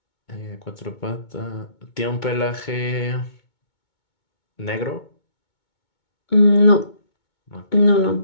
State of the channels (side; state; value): right; late; 2.2 ms